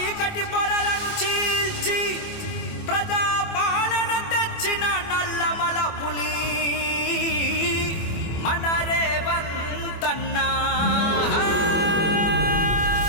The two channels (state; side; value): late; right; 24 ms